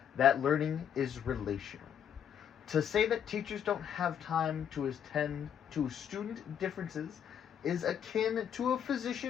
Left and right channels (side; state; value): right; quieter; 8.9 dB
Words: that learning is relational. To say that teachers don't have time to attend to student differences is akin to a